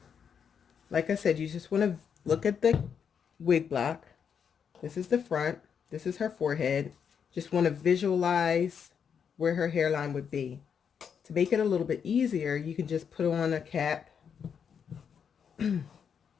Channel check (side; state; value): right; quieter; 7.2 dB